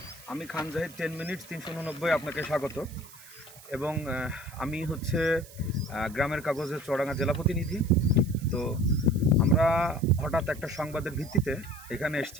আমি খান জাহিদ 10 মিনিট 389 আপনাকে স্বাগত। এবং আমি হচ্ছে গ্রামের কাগজের চুয়াডাঙ্গা জেলা প্রতিনিধি। তো আমরা হঠাৎ একটা সংবাদের ভিত্তিতে এখানে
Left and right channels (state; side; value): noise; right; hiss, 20 dB below the sound